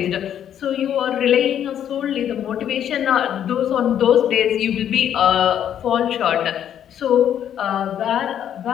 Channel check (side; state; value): right; quieter; 9.9 dB